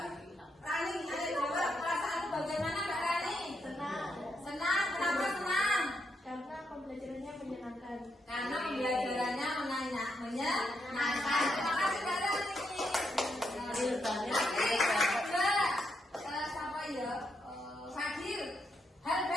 Rani, ada jawab perasaan bagaimana Mbak Rani? Senang. Senang, kenapa senang? Karena pembelajarannya menyenangkan. Karena pembelajarannya menyenangkan. Terima kasih Mbak Rani. Siapa ya? Fadil. Hal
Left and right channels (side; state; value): both; normal; correlation 0.80